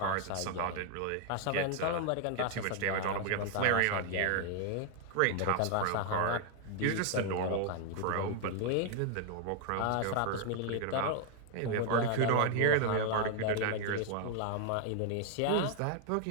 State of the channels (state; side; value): different; both; correlation 0.00